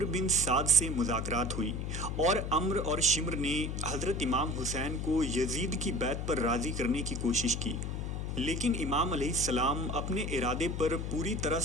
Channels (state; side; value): noise; left; hum, 3 dB below the sound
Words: بن سعد سے مذاکرات ہوئی اور عمرو اور شمر نے حضرت امام حسین کو یزید کی بیعت پر راضی کرنے کی کوشش کی، لیکن امام علیہ السلام اپنے ارادے پر پوری طرح